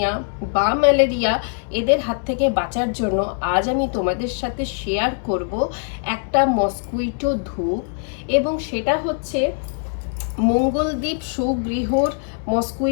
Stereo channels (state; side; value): silent; right; 58 dB below the other